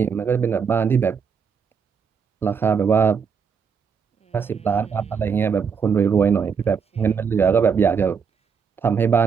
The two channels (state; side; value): quieter; left; 6.3 dB